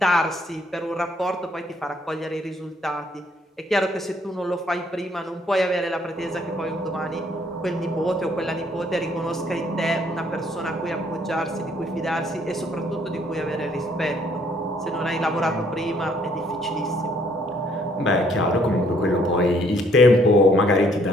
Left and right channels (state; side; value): normal; both; correlation 0.65